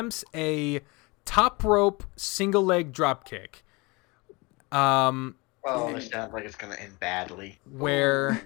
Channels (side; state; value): right; quieter; 26.0 dB